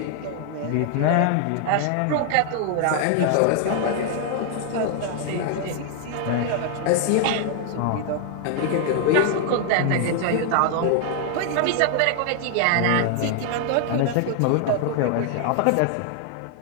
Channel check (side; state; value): both; different; correlation 0.00